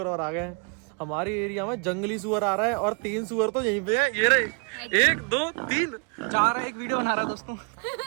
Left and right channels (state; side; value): quieter; left; 35.1 dB